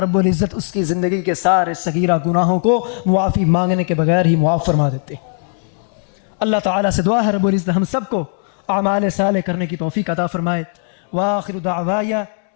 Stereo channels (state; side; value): silent; right; digital silence